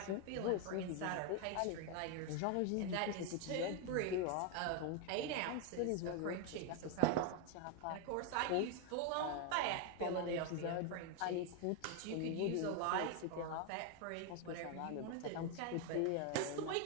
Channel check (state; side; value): different; both; correlation 0.01